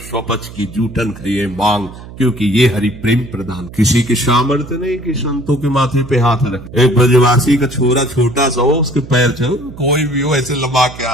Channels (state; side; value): noise; right; hum, 15 dB below the sound